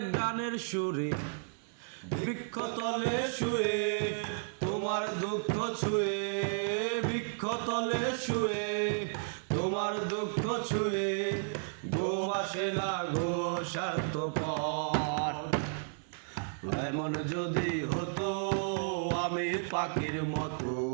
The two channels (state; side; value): silent; left; 56 dB below the other